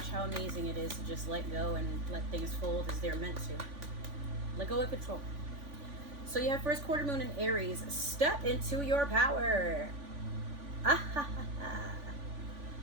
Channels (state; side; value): late; left; 3.5 ms